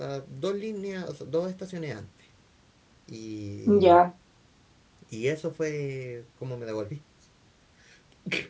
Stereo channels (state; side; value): identical; both; correlation 1.00